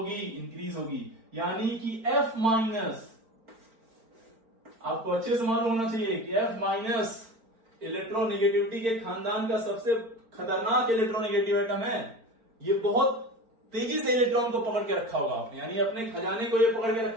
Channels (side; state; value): left; late; 4.4 ms